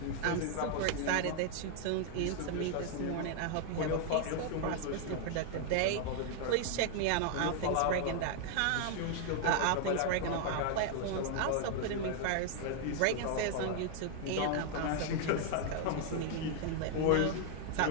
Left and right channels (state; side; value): different; both; correlation 0.00